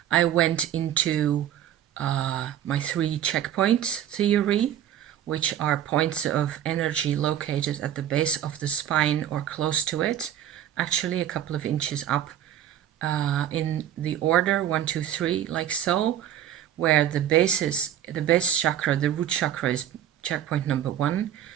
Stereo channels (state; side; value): quieter; left; 10.7 dB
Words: I went into my 3 checkpoints theory, which are points of energy located at the base of the spine or close to it, actually a couple of inches up in the order 1, 2, 3, like so, where the base chakra, the root chakra, is checkpoint number 1.